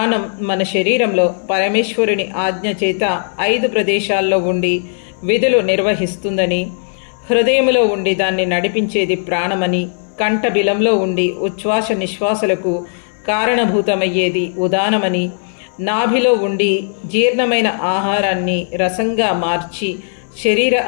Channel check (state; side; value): silent; right; 65 dB below the other